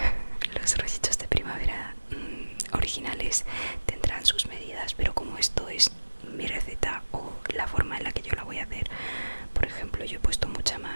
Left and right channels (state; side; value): inverted; both; correlation -1.00